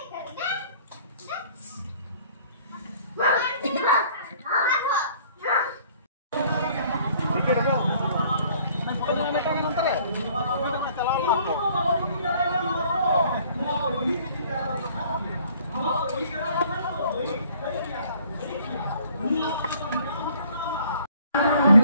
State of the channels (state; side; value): inverted; both; correlation -0.57